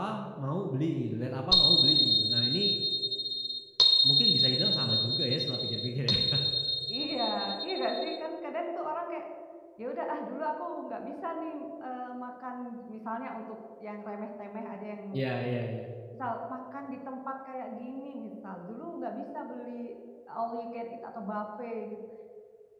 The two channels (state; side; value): identical; both; correlation 1.00